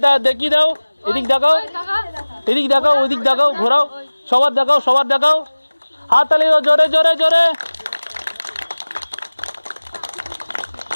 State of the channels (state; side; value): inverted; both; correlation -1.00